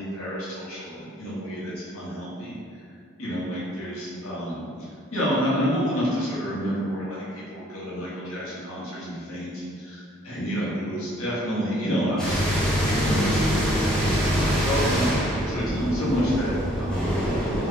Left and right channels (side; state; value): both; normal; correlation 0.62